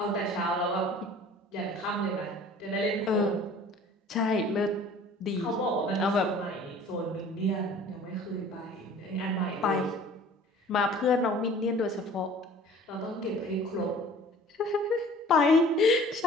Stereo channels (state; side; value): normal; both; correlation 0.48